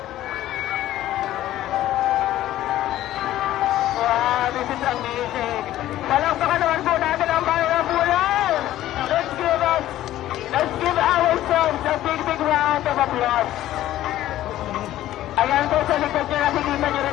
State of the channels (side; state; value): right; quieter; 13.8 dB